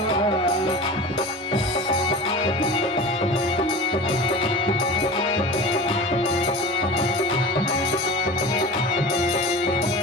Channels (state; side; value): normal; both; correlation 0.33